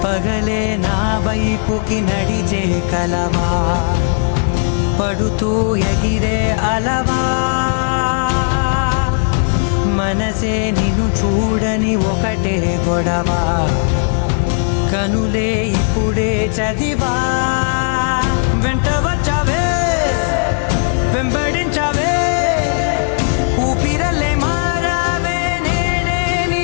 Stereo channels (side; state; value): right; silent; 60 dB below the other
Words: పగలే నా వైపుకి నడిచే కలవా పడుతూ ఎగిరే అలవా మనసే నిన్ను చూడని ఒకటే గొడవ కనులే ఇప్పుడే చదివా వెంట వచ్చావే వెంబడించావే ఊపిరలే మారావే నేడే